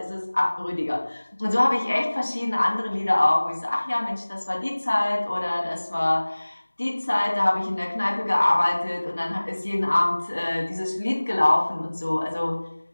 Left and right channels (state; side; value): inverted; both; correlation -1.00